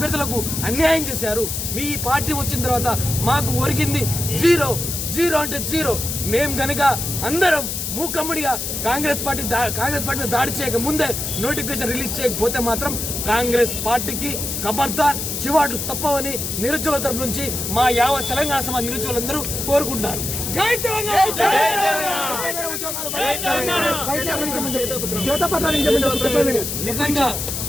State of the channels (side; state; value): left; noise; hiss, 3 dB below the sound